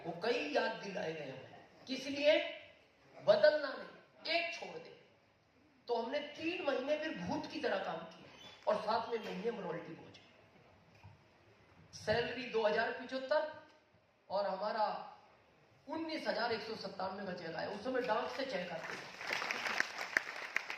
वो कई याद दिलाए गए हमें। किस लिए? बदलना नहीं, एक छोड़ दे। तो हमने 3 महीने फिर भूत की तरह काम किया, और 7वें महीने में रॉयल्टी पहुंचे। सैलरी 2075 और हमारा 19,197 का चेक आया। उस समय डाक से चेक आते,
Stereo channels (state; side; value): identical; both; correlation 1.00